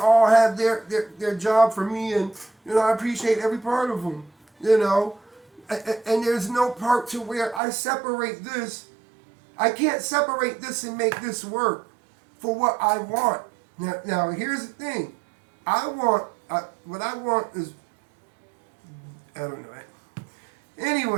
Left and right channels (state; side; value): drops out; left; at 7.6 s